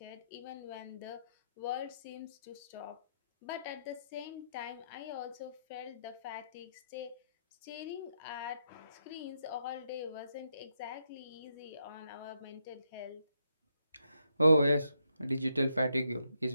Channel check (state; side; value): inverted; both; correlation -0.81